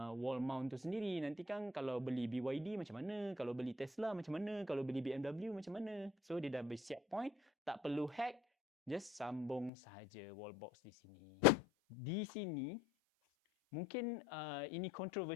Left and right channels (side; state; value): right; drops out; at 9.7 s